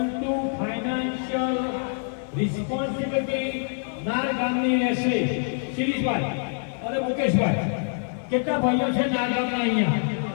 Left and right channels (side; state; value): right; silent; digital silence